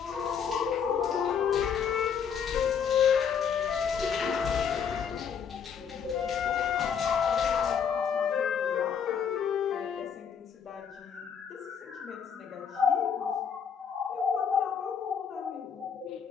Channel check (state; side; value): quieter; right; 7.2 dB